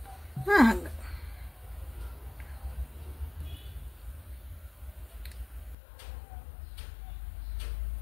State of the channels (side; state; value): right; drops out; at 5.8 s